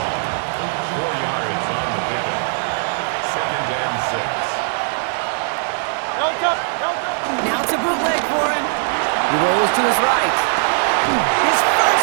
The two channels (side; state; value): left; silent; digital silence